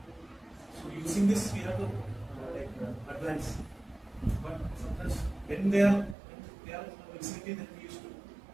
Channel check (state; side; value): drops out; left; at 6.2 s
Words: this we have to advance. But sometimes when they are in the vicinity, then we used to